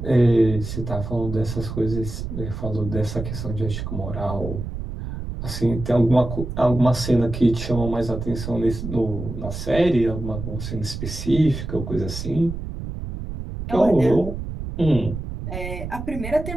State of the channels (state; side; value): noise; right; rumble, 7 dB below the sound